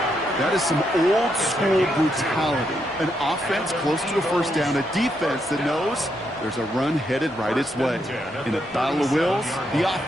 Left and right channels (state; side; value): normal; both; correlation 0.79